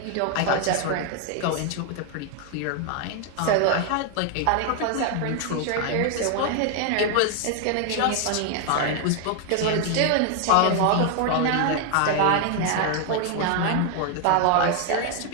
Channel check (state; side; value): different; both; correlation 0.00